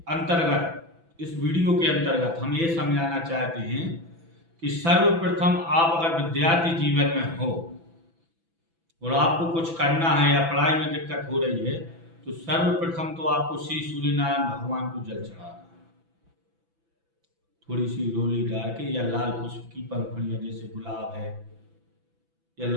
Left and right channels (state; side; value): late; left; 6.0 ms